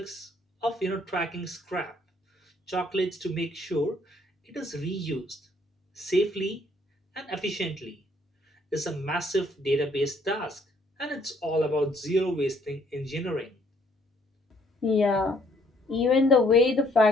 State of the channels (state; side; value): normal; both; correlation 0.65